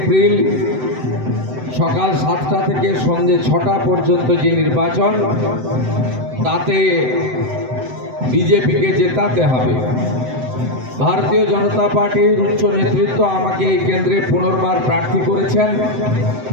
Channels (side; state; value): left; late; 7.8 ms